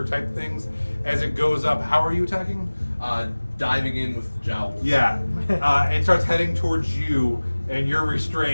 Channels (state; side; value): inverted; both; correlation -1.00